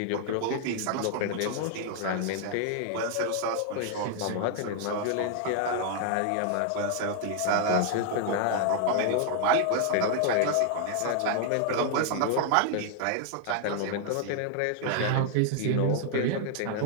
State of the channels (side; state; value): both; different; correlation 0.00